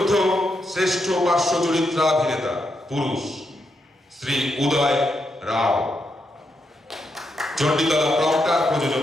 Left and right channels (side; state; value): both; normal; correlation 0.82